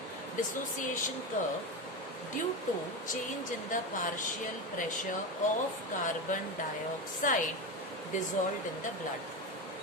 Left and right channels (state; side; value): normal; both; correlation 0.19